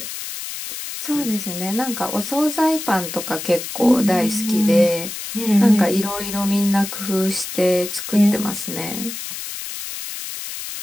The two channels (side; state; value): left; noise; hiss, 8 dB below the sound